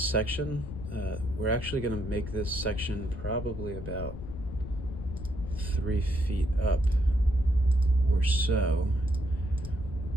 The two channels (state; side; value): noise; left; rumble, 10 dB below the sound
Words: We're actually going to make this section probably about 3 feet up or so.